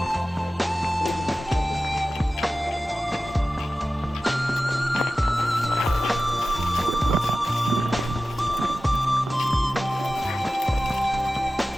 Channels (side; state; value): both; normal; correlation 0.95